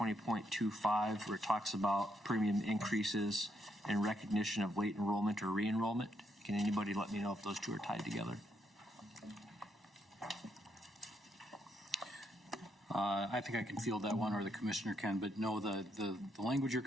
where it talks about premium increases in recognition of late enrollment or re-enrollment? Can anybody let me know if those two are tied together? I think I can field that one, or the commissioner can, but no, the language you're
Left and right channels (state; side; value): normal; both; correlation 0.77